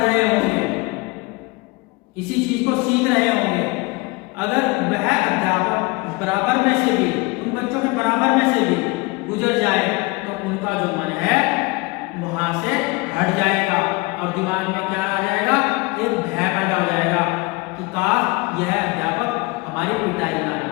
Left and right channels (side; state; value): right; quieter; 25.2 dB